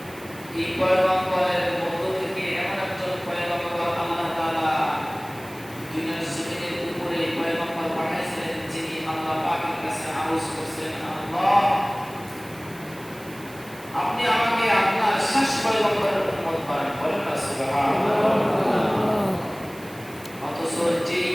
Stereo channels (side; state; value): right; noise; hiss, 21 dB below the sound